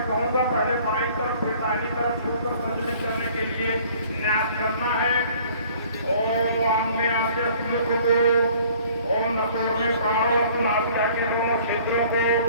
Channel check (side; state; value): both; inverted; correlation -0.54